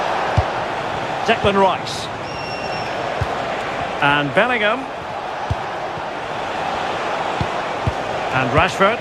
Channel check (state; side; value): identical; both; correlation 1.00